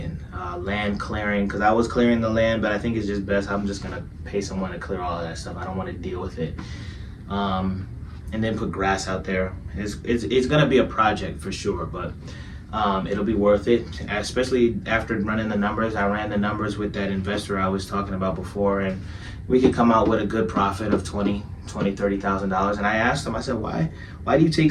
land clearing, because I was clearing the land, but I think it's just best I'm just gonna pay someone to clear all of that stuff. I don't want to deal with it. And then put grass out there. It's gonna be a project for sure, but it'll be worth it, especially after running the numbers. I ran the numbers with that investor I was talking about before, and we could come out with a good profit of $30,000. And I asked him, I said, why do you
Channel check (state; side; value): identical; both; correlation 1.00